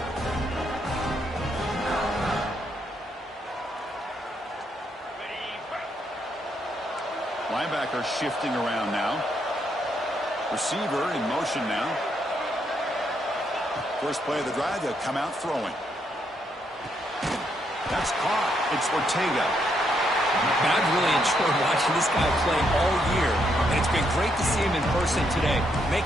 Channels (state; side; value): normal; both; correlation 0.76